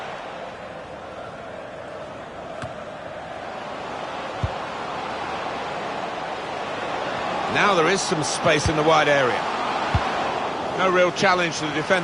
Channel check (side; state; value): both; identical; correlation 1.00